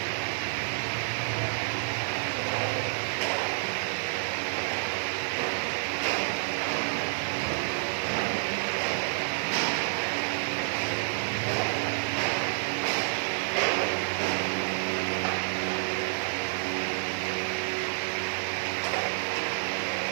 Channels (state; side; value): silent; left; digital silence